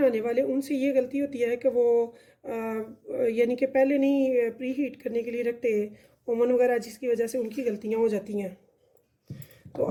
वाले, उनसे ये गलती होती है कि वो यानी कि पहले नहीं प्री हीट करने के लिए रखते ओवन वगैरह, जिसकी वजह से उनकी गलतियां हो जाती हैं। तो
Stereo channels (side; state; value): both; identical; correlation 1.00